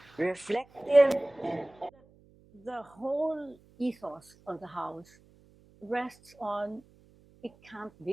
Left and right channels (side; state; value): right; noise; hum, 28 dB below the sound